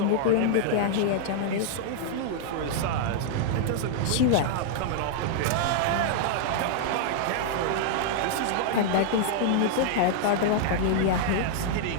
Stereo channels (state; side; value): different; both; correlation -0.01